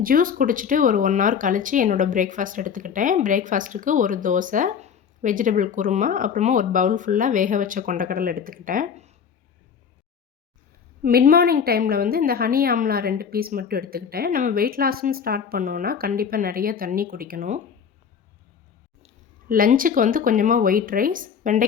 ஜூஸ் குடிச்சிட்டு ஒரு 1 ஹவர் கழித்து என்னோடய பிரேக்ஃபாஸ்ட் எடுத்துக்கிட்டேன். பிரேக்ஃபாஸ்ட்டுக்கு ஒரு தோசை, வெஜிடபிள் குருமா, அப்புறமா ஒரு பவுல் ஃபுல்லாக வேக வச்ச கொண்டக்கடலை எடுத்துக்கிட்டேன். மிட் மார்னிங் டைமில் இந்த ஹனி ஆம்லா 2 பீஸ் மட்டும் எடுத்துக்கிட்டேன். நம்ம வெயிட் லாஸ்ன்னு ஸ்டார்ட் பண்ணோன்னா கண்டிப்பாக நிறைய தண்ணி குடிக்கணும். லஞ்சுக்கு கொஞ்சமாக ஒயிட் ரைஸ்,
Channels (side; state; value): right; quieter; 7.1 dB